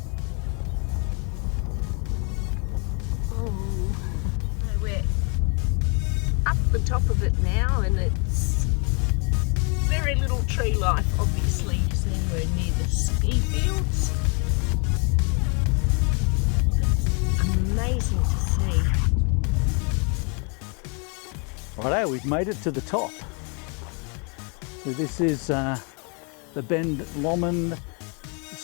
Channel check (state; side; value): quieter; right; 35.5 dB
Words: Oh, we're up the top of it now, and it's very little tree life, obviously, because anywhere near the ski ski fields. It's amazing to see. Righto, we've made it to the top. So this is the Ben Lomond